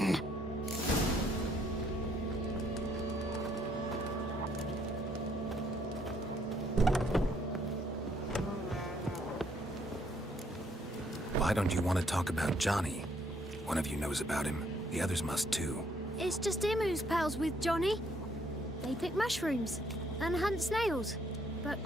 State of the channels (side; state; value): both; normal; correlation 0.68